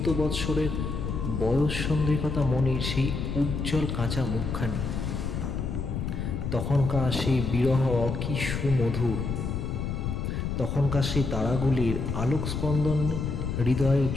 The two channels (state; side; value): noise; left; rumble, 3 dB below the sound